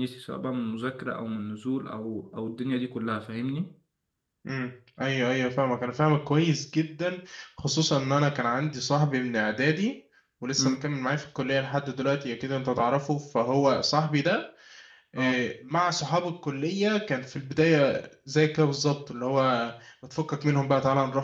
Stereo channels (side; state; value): both; identical; correlation 1.00